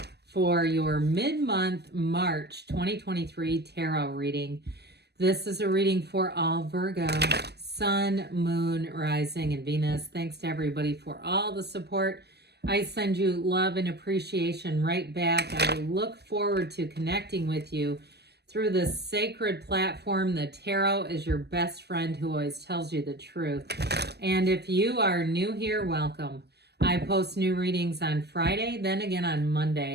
for your mid-month March 2023 tarot reading. This is a reading for all Virgo, Sun, Moon, Rising, and Venus. Thanks to everybody for all the support. I send you love and appreciation right back. I look forward to connecting with you through this sacred platform. The tarot is your best friend who always tells you the truth. And if you are new here, welcome. I post new readings on Friday, then again on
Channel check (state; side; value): late; left; 0.48 ms